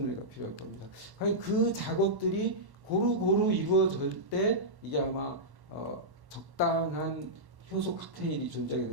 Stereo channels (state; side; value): late; left; 1.1 ms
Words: 애가 필요할 겁니다. 과연 그 작업들이 고루고루 이루어질 때 이게 아마 적당한 효소 칵테일이 존재하게